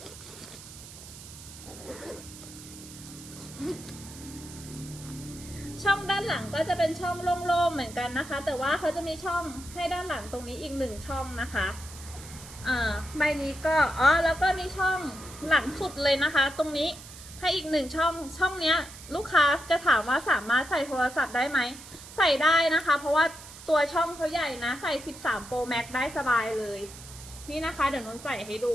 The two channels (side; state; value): right; noise; hiss, 16 dB below the sound